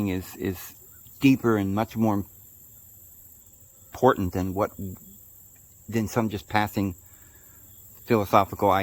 is deeper and much more important than some just passing philosophical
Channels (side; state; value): both; identical; correlation 1.00